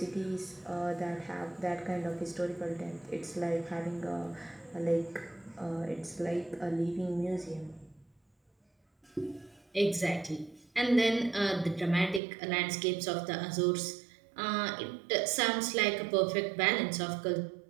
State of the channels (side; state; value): left; drops out; at 12.2 s